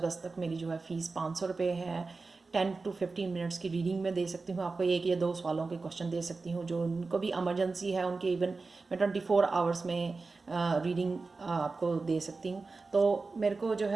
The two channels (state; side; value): quieter; left; 4.0 dB